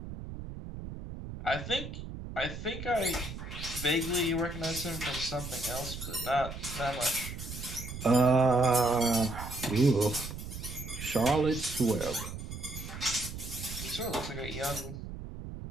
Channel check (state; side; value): noise; right; rumble, 9 dB below the sound